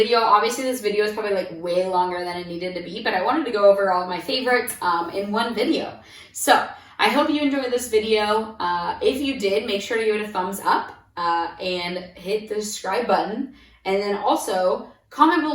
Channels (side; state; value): both; identical; correlation 1.00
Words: Obviously, this video is probably like way longer than it needed to be, but I wanted to go over all of my favorites in one video. So I hope you enjoyed this video. If you did, make sure to give it a thumbs up and hit the subscribe button. And then also comment